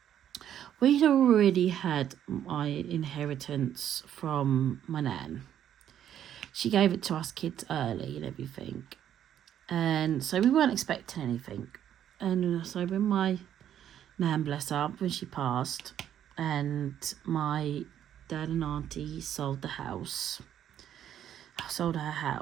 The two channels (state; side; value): quieter; left; 10.3 dB